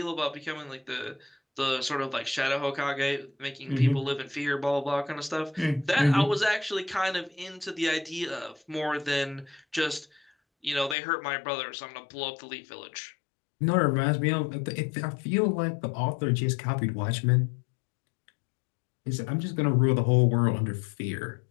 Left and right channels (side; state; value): right; drops out; at 11.0 s